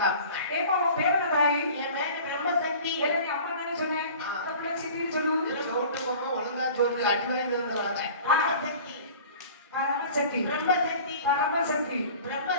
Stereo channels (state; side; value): inverted; both; correlation -0.43